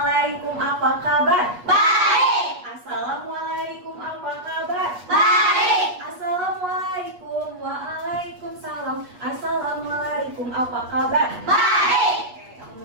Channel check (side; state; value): left; late; 8.3 ms